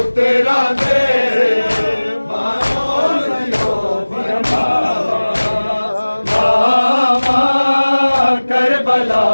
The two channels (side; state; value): both; inverted; correlation -1.00